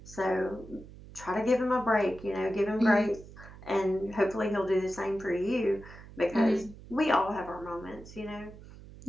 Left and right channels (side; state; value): right; noise; hum, 17 dB below the sound